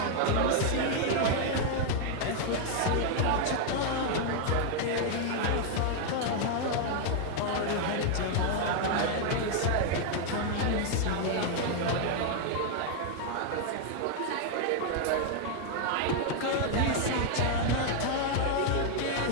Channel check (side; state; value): both; different; correlation 0.00